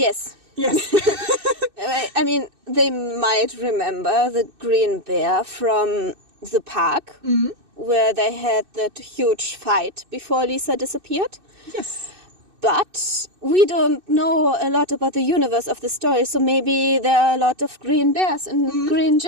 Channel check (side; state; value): left; late; 2.6 ms